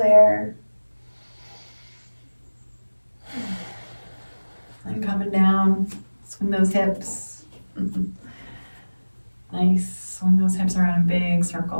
And coming down, swing those hips. Nice, swing those hips around in big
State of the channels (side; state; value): both; inverted; correlation -1.00